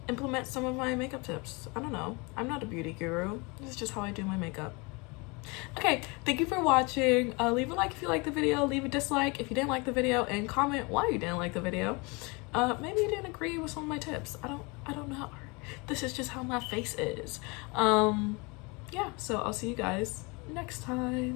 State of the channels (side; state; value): right; quieter; 28.3 dB